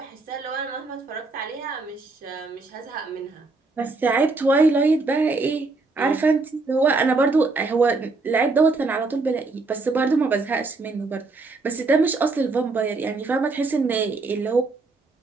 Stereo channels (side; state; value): left; quieter; 3.7 dB